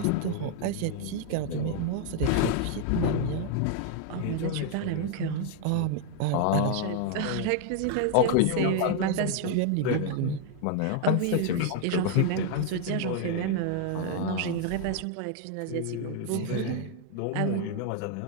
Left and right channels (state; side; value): different; both; correlation 0.00